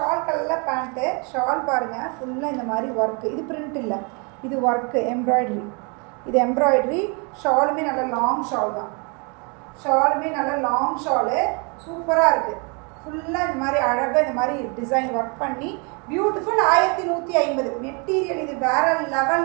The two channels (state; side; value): quieter; left; 34.0 dB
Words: கலரில் பேண்ட்டு. ஷால் பாருங்கள் ஃபுல்லாக இந்த மாதிரி ஒர்க்கு, இது பிரிண்ட் இல்லை, இது ஒர்க்கு எம்ப்ராய்டரி, இது எம்ப்ராய்டரி. ஷாலுமே நல்ல லாங் ஷால் தான், ஷாலுமே நல்ல லாங் ஷாலு, சூப்பராக இருக்குது. ஃபுல்லாக இந்த மாதிரி அழகாக இந்த மாதிரி டிசைன் ஒர்க் பண்ணி பியூட்டிஃபுல். 1150 மெட்டீரியல், இது வேறு